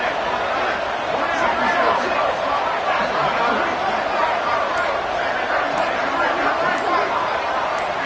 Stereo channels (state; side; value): identical; both; correlation 1.00